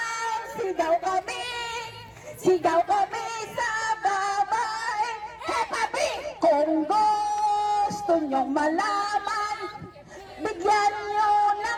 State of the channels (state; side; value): identical; both; correlation 1.00